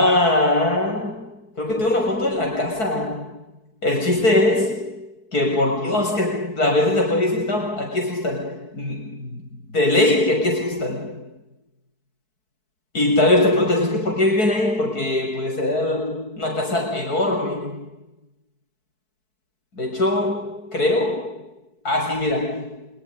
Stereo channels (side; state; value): right; late; 4.6 ms